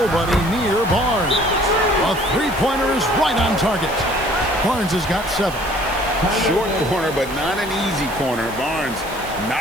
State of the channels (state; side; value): noise; right; hiss, 16 dB below the sound